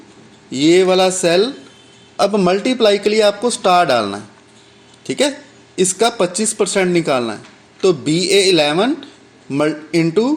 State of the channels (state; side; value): identical; both; correlation 1.00